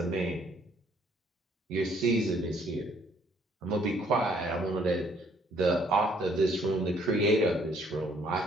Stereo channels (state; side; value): normal; both; correlation 0.64